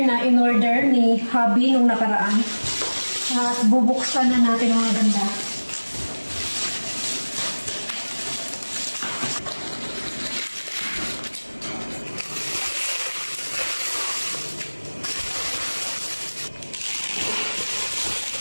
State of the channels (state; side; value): inverted; both; correlation -1.00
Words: na in-order ni hubby nung nakaraan. At bubuksan na natin mga ganda.